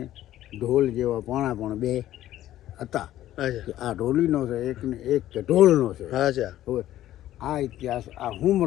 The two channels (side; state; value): right; quieter; 13.4 dB